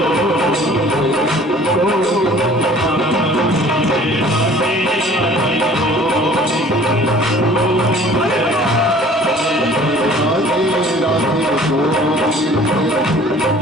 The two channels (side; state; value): both; normal; correlation 0.51